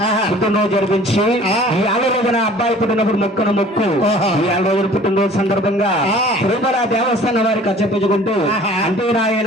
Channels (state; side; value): normal; both; correlation 0.49